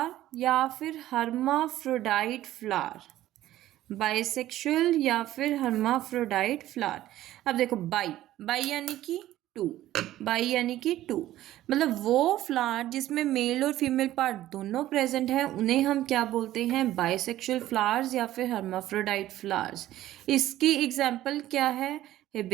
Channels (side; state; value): left; quieter; 14.2 dB